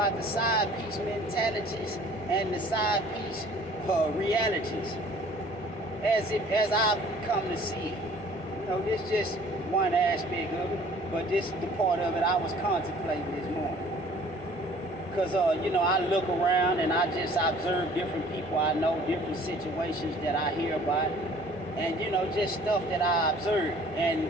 the side piece mentalities and the side piece realities as I've come to see it. You know, this just one aspect of it, but this is the part of it I was contemplating this morning. Because, I look around and I just observe different people I know, different situations that I hear about, and, just stuff that I observe.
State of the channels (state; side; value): normal; both; correlation 0.52